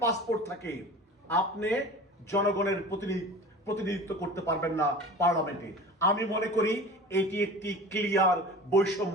পাসপোর্ট থাকে, আপনি জনগণের প্রতিনিধিত্ব করতে পারবেন না পার্লামেন্টে। আমি মনে করি এটি একটি ক্লিয়ার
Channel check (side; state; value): both; normal; correlation 0.37